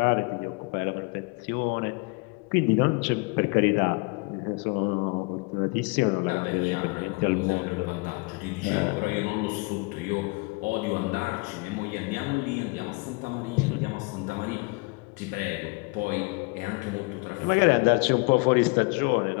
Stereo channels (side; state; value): right; quieter; 28.5 dB